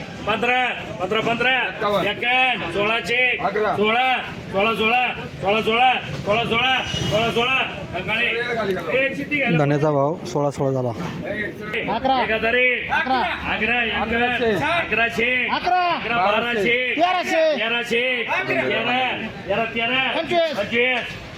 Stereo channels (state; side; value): identical; both; correlation 1.00